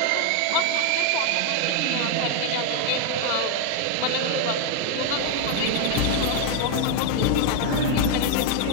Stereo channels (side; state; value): both; different; correlation 0.01